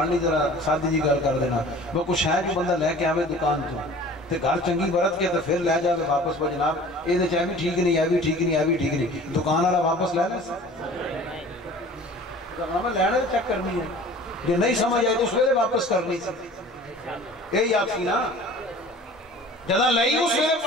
نہیں ذرا سادی جی گل کر دینا. وہ کچھ ہے جو بندہ لے کے آوے دکان تو تے گھر چنگی برت کے تو پھر لے جاوے واپس. وہ جناب یہ چاہے بھی ٹھیک نہیں، یہ بھی ٹھیک نہیں، یہ بھی ٹھیک نہیں، دکان والا واپس لے لے ہمیں لینا چیک کرنی ہے. جو نہیں سمجھ آئی تو اس ویلے واپس کرنی سی. یہی آپ کی نا جدہ لئی اس ویلے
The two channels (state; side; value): normal; both; correlation 0.45